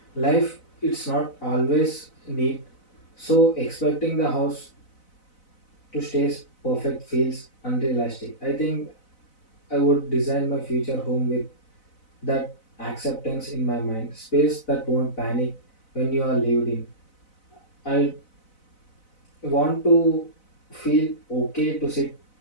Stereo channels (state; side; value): late; right; 4.0 ms